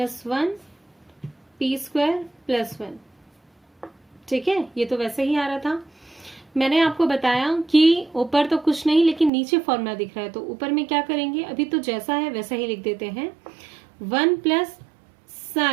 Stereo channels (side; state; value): left; drops out; at 9.3 s